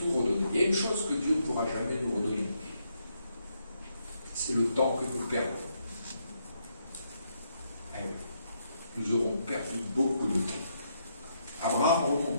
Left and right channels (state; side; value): inverted; both; correlation -0.77